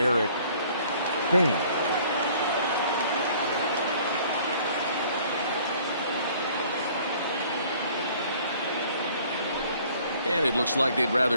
Thames. And it looks like they'd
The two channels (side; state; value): both; inverted; correlation -0.55